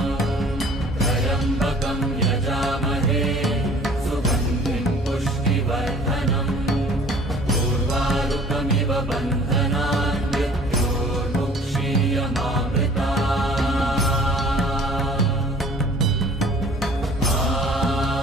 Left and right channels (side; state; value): both; normal; correlation 0.51